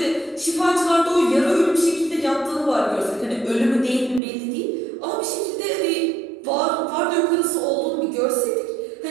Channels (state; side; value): drops out; left; at 4.2 s